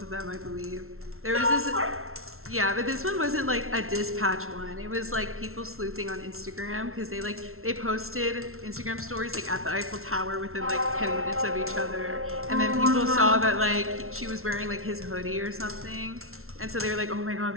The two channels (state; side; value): late; left; 0.62 ms